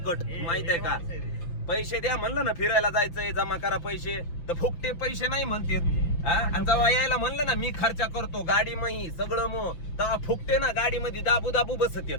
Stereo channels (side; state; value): right; late; 5.8 ms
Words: माहितीये का. पैसे द्या म्हणलं ना, फिरायला जायचंय जमा करा पैसे, तर फुकटे पैसे नाही म्हणतात. आणि जेव्हा यायला म्हणलं ना, मी खर्च करतो गाडी मही सगळं मग, तेव्हा फुकटे ना गाडीमध्ये दाबू दाबू बसत येत,